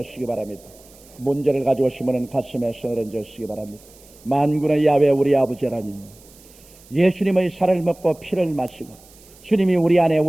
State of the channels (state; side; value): noise; right; hiss, 25 dB below the sound